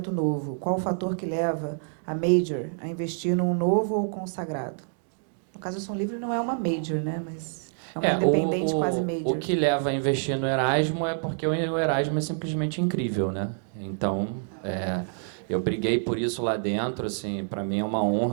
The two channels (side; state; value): left; silent; digital silence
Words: novo? Qual o fator que leva a Major a investir num novo ou consagrado? No caso, a Som Livre não é uma Major, né? Mas é uma independente quase Major. O que leva a investir no Erasmo é porque o Erasmo é simplesmente incrível, né? Então, eu briguei por isso lá dentro. Assim, para mim é uma